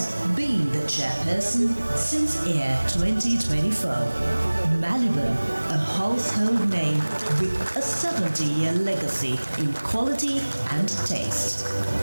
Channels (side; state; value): both; inverted; correlation -1.00